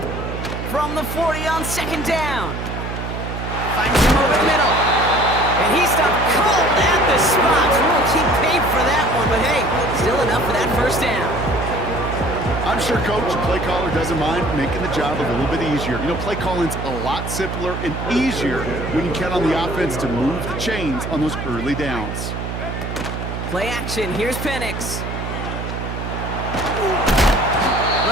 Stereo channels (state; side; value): noise; right; hum, 5 dB below the sound